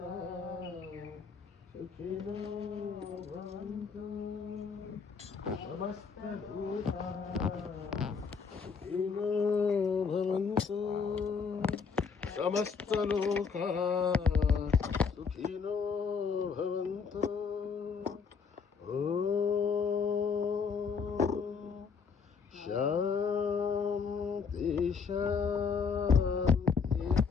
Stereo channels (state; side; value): quieter; right; 5.7 dB